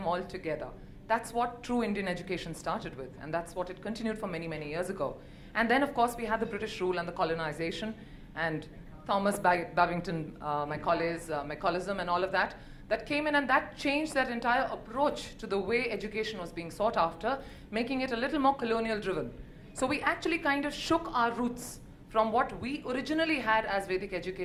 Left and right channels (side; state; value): both; identical; correlation 1.00